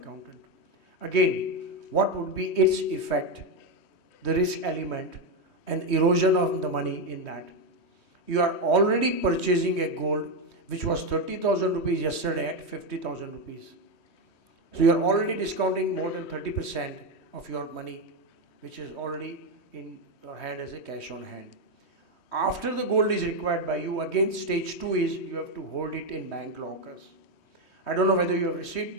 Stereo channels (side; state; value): right; late; 3.2 ms